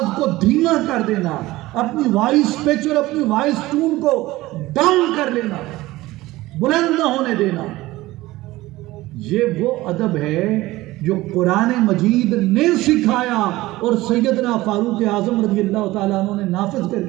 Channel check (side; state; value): left; quieter; 18.2 dB